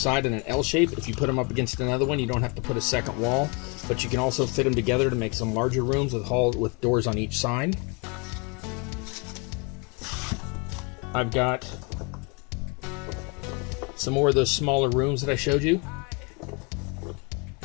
and an L shape. If you put them up against another one, you don't have to put a second wall, but you can also fit them together to make some larger rooms with doors on each side. I've got some more of those smaller rooms that I showed you.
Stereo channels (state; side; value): quieter; right; 32.2 dB